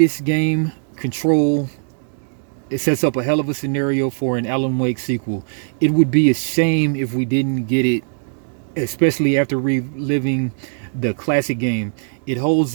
game, Control, it sets up a hell of a scenario for an Alan Wake sequel. It would be a shame if we didn't get it, especially after reliving the classic game. It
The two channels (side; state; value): left; silent; digital silence